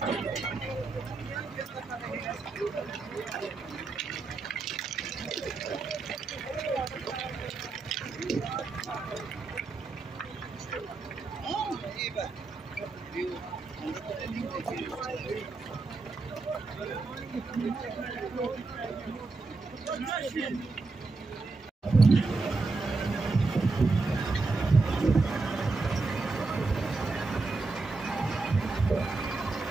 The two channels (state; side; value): quieter; left; 3.8 dB